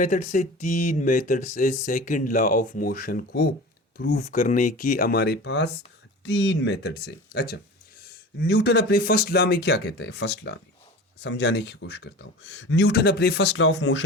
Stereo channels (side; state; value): both; normal; correlation 0.35